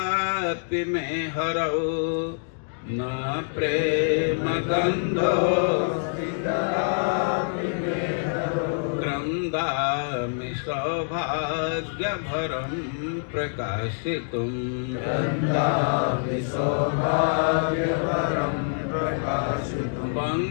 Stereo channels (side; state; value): right; silent; digital silence